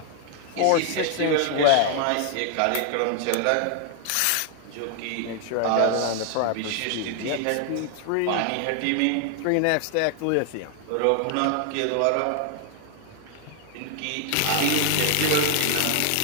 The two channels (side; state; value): both; different; correlation 0.00